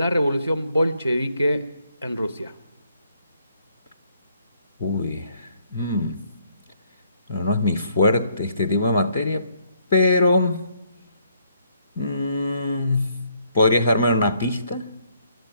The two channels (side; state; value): both; inverted; correlation -0.70